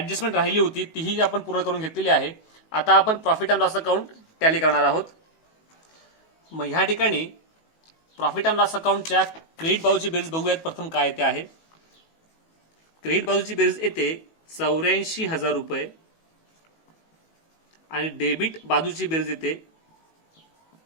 राहिली होती तीही आपण पूर्ण करून घेतलेली आहे. आता आपण profit and loss account tally करणार आहोत. मग ह्या ठिकाणी प्रॉफिट अँड लॉस अकाउंटच्या क्रेडिट बाजूची बेरीज बघूयात. प्रथम काय येते आहे? क्रेडिट बाजूची बेरीज येते 84,000 रुपये आणि डेबिट बाजूची बेरीज येते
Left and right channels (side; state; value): right; late; 18 ms